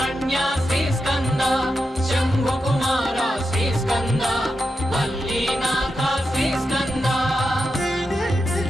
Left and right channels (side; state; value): both; normal; correlation 0.88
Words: శ్రీస్కంద శంభుకుమార శ్రీస్కంద వల్లీనాథ శ్రీస్కంద